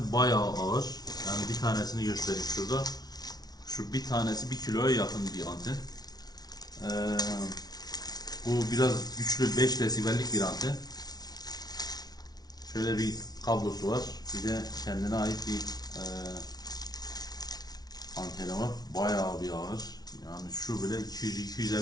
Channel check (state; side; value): late; right; 0.19 ms